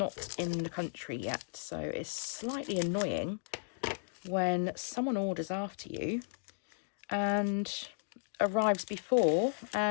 in the country yet, so it's slightly annoying when someone orders after you and arrives before,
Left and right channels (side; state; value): right; silent; digital silence